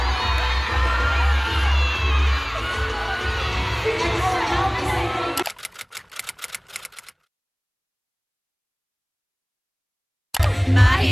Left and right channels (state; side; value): identical; both; correlation 1.00